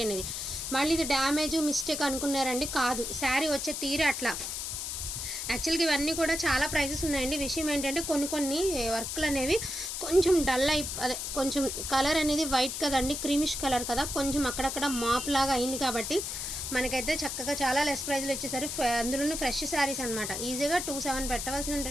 అనేది. మళ్ళీ ఇది డ్యామేజ్ మిస్టేక్ అనుకున్నారండి, కాదు. శారీ వచ్చే తీరే అట్లా. యాక్చువల్గా ఇవన్నీ కూడా చాలా ప్రైజెస్ ఉన్నాయండి. విషయం ఏంటంటే కొన్ని వర్క్లు అనేవి కొంచెం డల్ అదే కొంచెం కలర్ అనేది వైట్ కదండి, క్రీమిష్ కలర్ కదా, కొంచెం అక్కడక్కడ మాప్ లాగా అయింది కాబట్టి మనకైతే చక్కగా చాలా లెస్ ప్రైజ్లో వచ్చేసరి. అందులోనే ఫ్రెష్ శారీస్ అనమాట. ఈజీగా 2,700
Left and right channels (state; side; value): noise; left; hiss, 4 dB below the sound